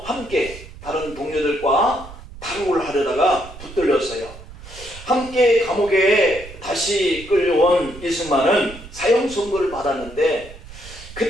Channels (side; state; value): right; noise; rumble, 16 dB below the sound